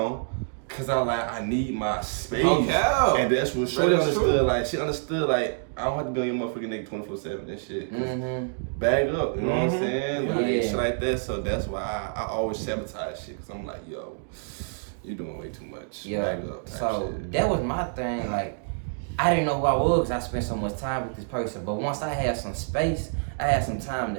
cause I need my space. Okay. And that's what Shorty That is understood. true. Like she understood like I don't have to be on your motherfucking nigga 24/7 and shit. Bag up, you know what I'm saying? Like Yeah. shit like that. So that's why I always sabotage shit. Cause I'm like, yo, you doing way too much. Yeah. Bag up. type So shit. that was my thing. Like I didn't know who I was because I spent so much time with this person. But once I had some space, I had some time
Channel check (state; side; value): silent; left; digital silence